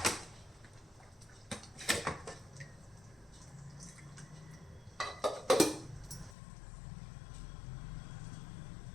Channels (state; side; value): drops out; right; at 6.4 s